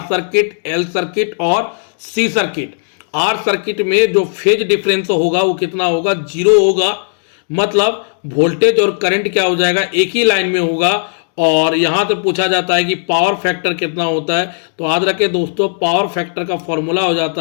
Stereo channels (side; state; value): right; silent; digital silence